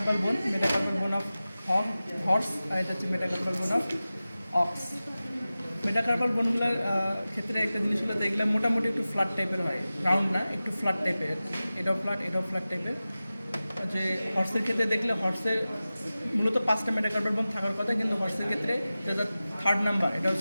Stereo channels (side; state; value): both; inverted; correlation -0.96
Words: বোন অফ হর্স, আর এটা হচ্ছে মেটাকার্পাল বোন অফ অক্স। মেটাকার্পাল বোনগুলোর ক্ষেত্রে একটা জিনিস হলো, এগুলো মোটামুটি একটু ফ্ল্যাট টাইপের হয়, রাউন্ড না, একটু ফ্ল্যাট টাইপের। এটাও ফ্ল্যাট টাইপের। যে হর্সের ক্ষেত্রে দেখলে হর্সের মূলত 5টা মেটাকার্পাল বোন থাকার কথা, কিন্তু হর্সের ক্ষেত্রে যেটা 3rd নাম্বার, এটা